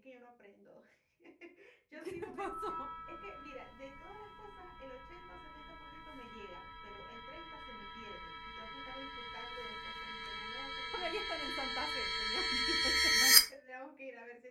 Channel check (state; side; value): identical; both; correlation 1.00